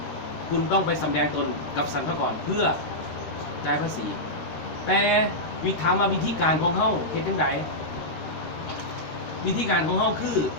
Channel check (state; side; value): late; right; 12 ms